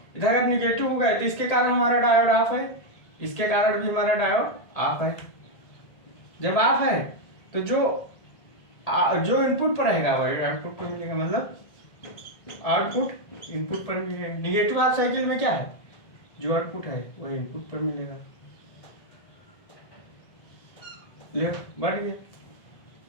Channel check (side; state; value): right; late; 1.7 ms